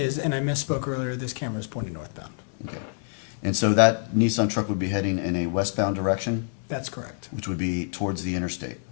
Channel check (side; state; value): right; silent; digital silence